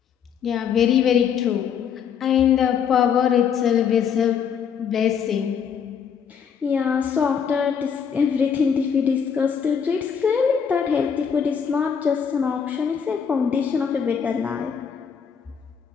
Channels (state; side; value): quieter; right; 7.3 dB